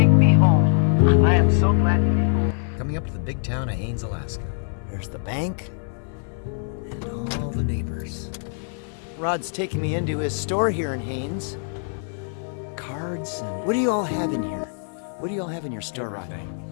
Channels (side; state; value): right; silent; 63 dB below the other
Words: me home. I am so glad to be home. Coming up to the big town of Haines, Alaska. There's the bank and all the neighbors. Rod's taking me into his store here in Haines. Cards and... What do you all have in here? What do you all have in your store, Rod?